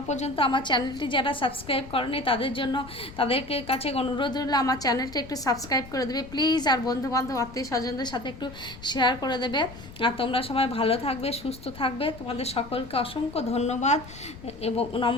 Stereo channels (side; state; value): left; noise; rumble, 16 dB below the sound